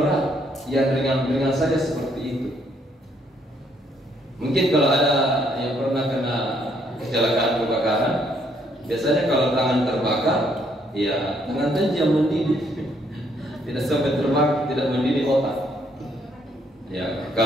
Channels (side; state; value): both; normal; correlation 0.70